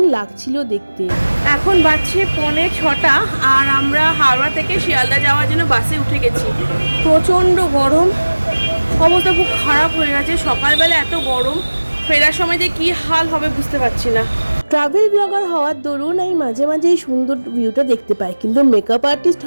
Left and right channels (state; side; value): inverted; both; correlation -1.00